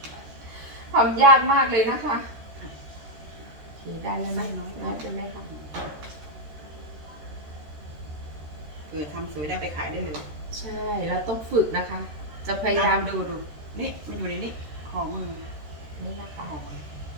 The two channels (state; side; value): late; left; 13 ms